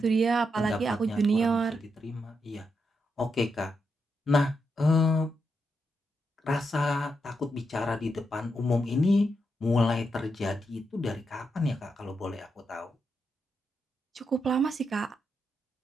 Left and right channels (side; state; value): both; normal; correlation 0.83